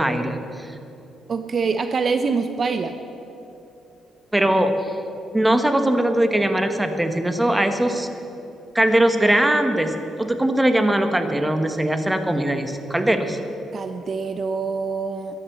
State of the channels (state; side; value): normal; both; correlation 0.92